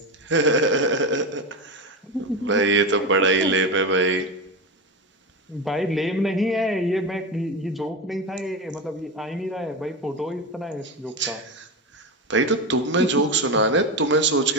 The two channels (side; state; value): both; normal; correlation 0.18